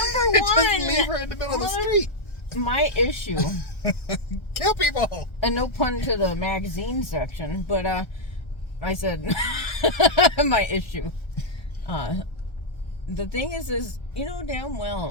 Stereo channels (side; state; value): right; late; 1.3 ms